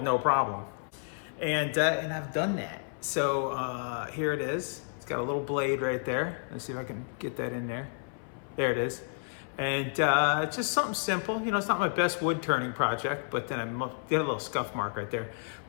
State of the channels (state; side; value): silent; right; 57 dB below the other